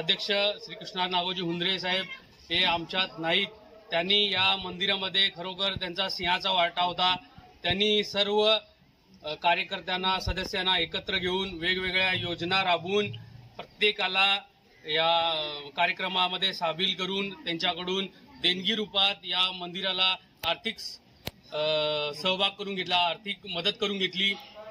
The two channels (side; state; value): both; identical; correlation 1.00